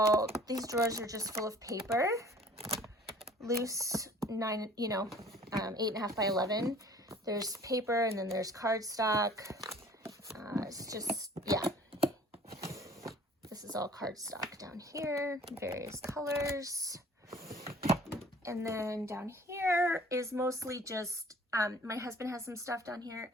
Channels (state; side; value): normal; both; correlation 0.50